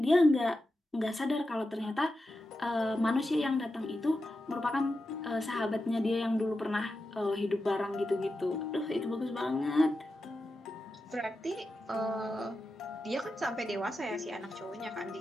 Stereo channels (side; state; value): both; normal; correlation 0.90